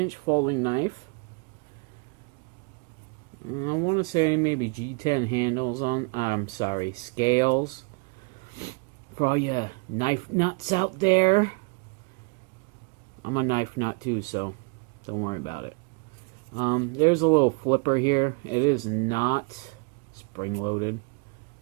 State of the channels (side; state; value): left; quieter; 32.7 dB